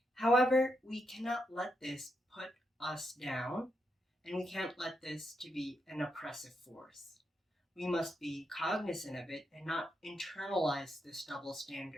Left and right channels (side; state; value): both; normal; correlation 0.82